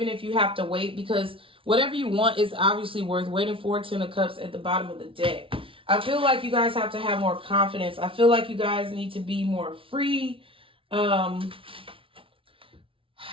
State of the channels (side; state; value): left; late; 0.26 ms